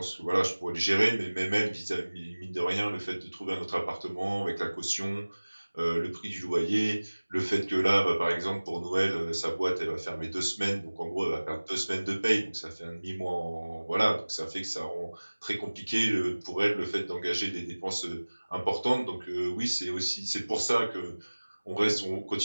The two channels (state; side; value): inverted; both; correlation -1.00